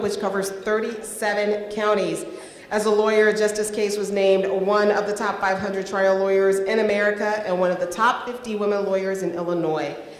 covers 37 counties. As a lawyer, Justice Cates was named one of the top 500 trial lawyers in America and one of the top 50 women lawyers in Illinois.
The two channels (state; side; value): identical; both; correlation 1.00